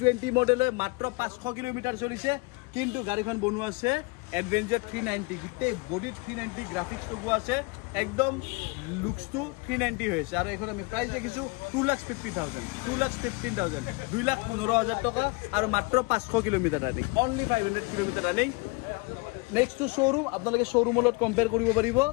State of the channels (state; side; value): quieter; right; 27.7 dB